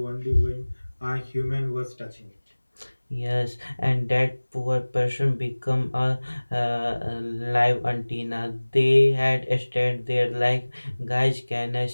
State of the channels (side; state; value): both; inverted; correlation -1.00